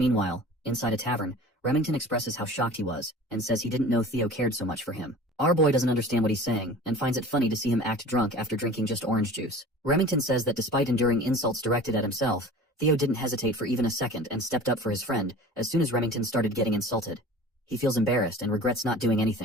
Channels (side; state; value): both; normal; correlation 0.41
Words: inside a tavern, Remington expresses how shocked he was, and says he didn't know Theo cared so much for him. Our boy doesn't understand what he's saying, and finds it funny to see him act drunk after drinking just orange juice. Remington says that despite enduring insults directed at himself, Theo didn't hesitate for even a second and stepped up for his friend as soon as Remington started getting insulted. He feels embarrassed and regrets not doing